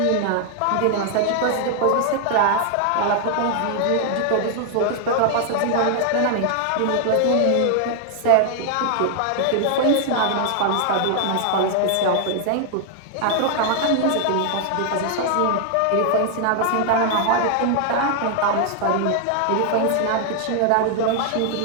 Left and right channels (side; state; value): both; different; correlation 0.00